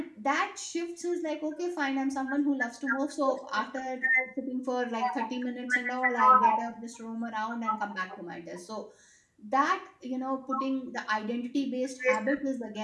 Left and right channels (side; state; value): both; identical; correlation 1.00